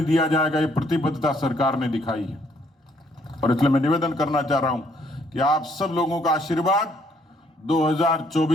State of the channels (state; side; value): normal; both; correlation 0.67